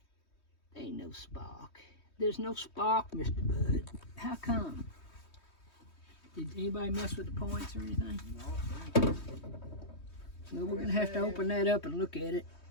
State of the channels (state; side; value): late; right; 3.2 ms